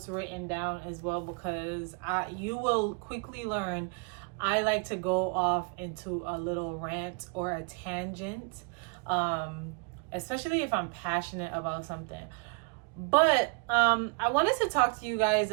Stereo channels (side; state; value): left; quieter; 33.3 dB